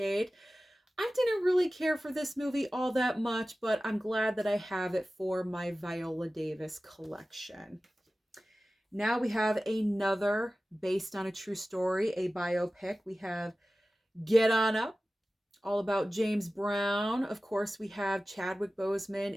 I didn't really care for this movie all that much, but I'm glad that I have it for my Viola Davis collection. Now we have another based on a true story, a biopic. We have Get On Up, all about James Brown. Of course, we have Chadwick Boseman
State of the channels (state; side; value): normal; both; correlation 0.96